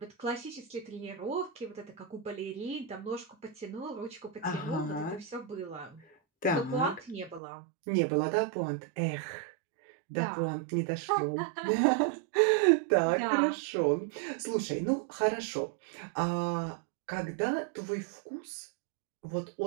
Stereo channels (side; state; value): left; drops out; at 7.4 s